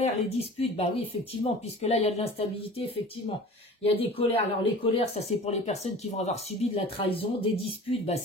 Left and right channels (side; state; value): both; normal; correlation 0.40